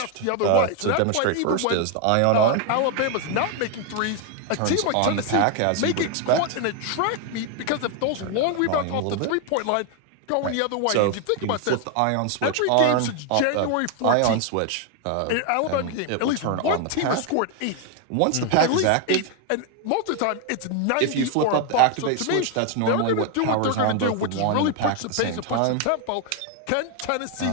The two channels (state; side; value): different; both; correlation 0.01